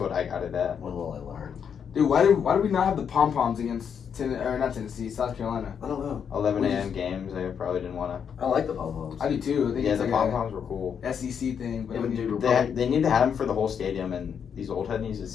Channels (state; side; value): quieter; right; 7.4 dB